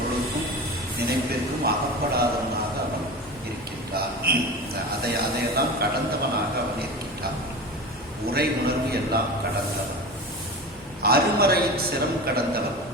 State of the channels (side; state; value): both; normal; correlation 0.30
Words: நினைப்பிற்கும் அகப்படாதவனாக அவன் இருக்கின்றான். அதையெல்லாம் கடந்தவனாக அவன் இருக்கின்றான். உரை உணர்வு எல்லாம் கடந்தவன். அருமறையின் சிரம் கடந்தவன்.